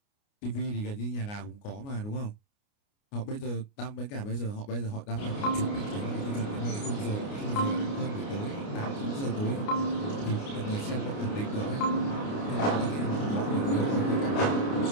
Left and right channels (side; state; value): right; late; 29 ms